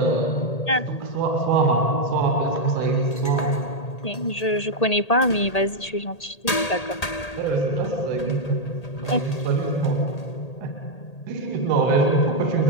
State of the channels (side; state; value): right; late; 1.8 ms